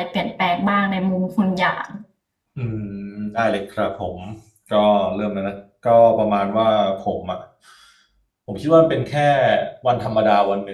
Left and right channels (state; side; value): identical; both; correlation 1.00